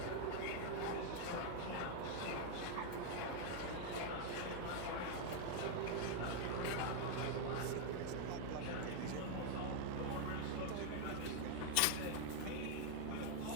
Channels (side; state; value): both; different; correlation 0.00